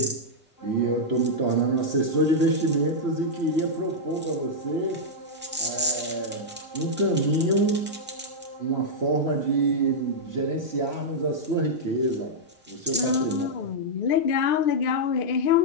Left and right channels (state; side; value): normal; both; correlation -0.06